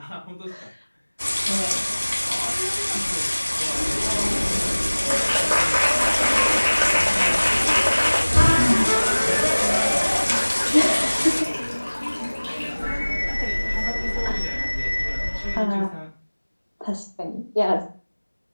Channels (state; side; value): inverted; both; correlation -1.00